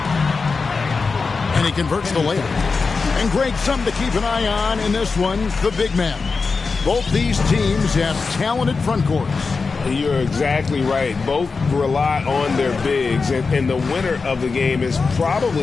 And he converts the layup. And Greg, something to keep an eye on in this one, the big man. Both these teams have talented front courts. You're exactly right. Both rely on their bigs, and the winner of the game is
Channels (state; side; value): quieter; right; 4.5 dB